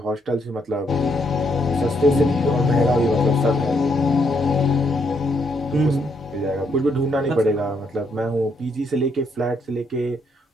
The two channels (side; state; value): both; normal; correlation 0.74